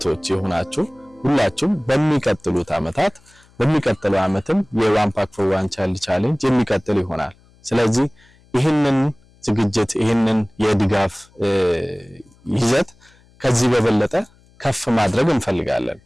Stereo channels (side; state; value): left; noise; hum, 30 dB below the sound